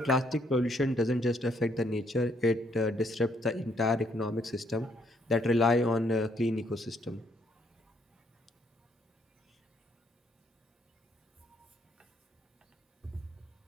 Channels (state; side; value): normal; both; correlation 0.70